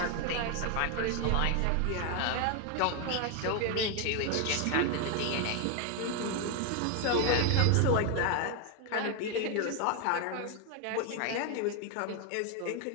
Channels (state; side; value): different; both; correlation 0.01